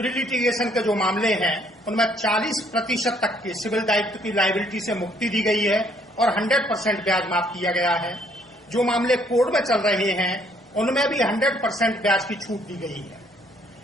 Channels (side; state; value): both; normal; correlation 0.65